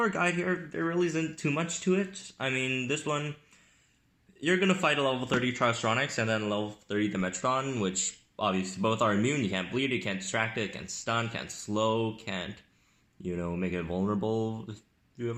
a guide here, there really isn't too much to it. I mean, this one, you're gonna fight a level 30 Tryostronix and then a level 30 Dimetrodon, which obviously both are immune. You can't bleed it, can't distract it, can't stun, can't slow, can't, make it vulnerable if you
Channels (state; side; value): identical; both; correlation 1.00